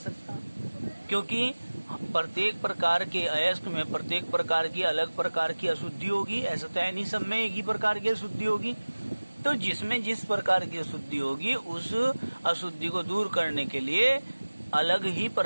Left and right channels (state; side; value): inverted; both; correlation -1.00